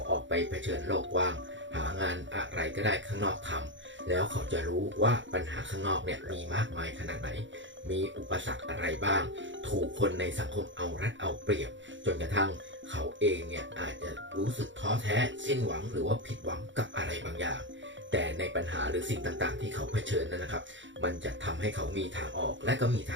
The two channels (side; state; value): left; late; 0.54 ms